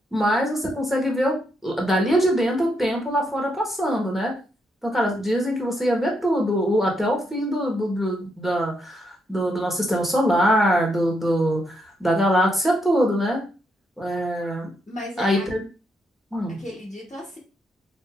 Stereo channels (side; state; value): both; normal; correlation 0.78